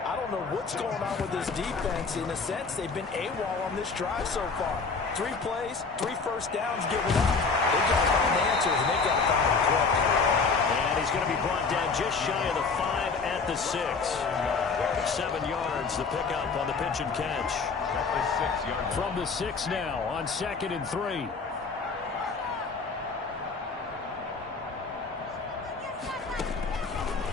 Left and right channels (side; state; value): right; quieter; 4.6 dB